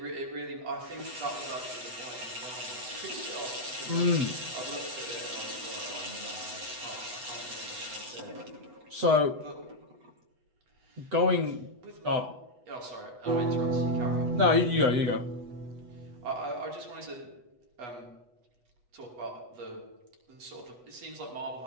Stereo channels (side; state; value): left; late; 8.1 ms